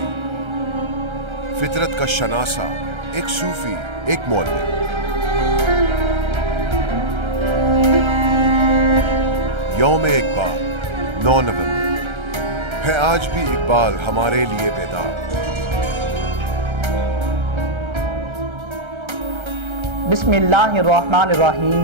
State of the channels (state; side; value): late; left; 1.3 ms